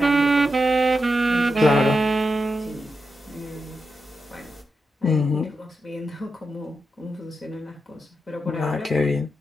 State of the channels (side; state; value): both; normal; correlation 0.87